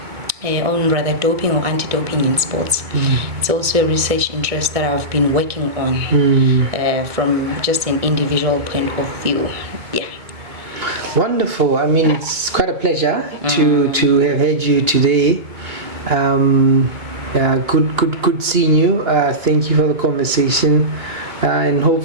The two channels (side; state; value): left; late; 2.2 ms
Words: rather doping or anti-doping in sports. It's also a research interest that I've been working on from just an individual point of view. Wonderful. I mean, it's quite a pleasure to have had you today. Good seeing you. Thank you for the conversation, and